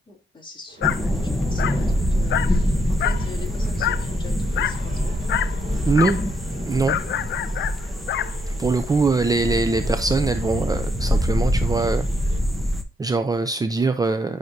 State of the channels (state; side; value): normal; both; correlation 0.75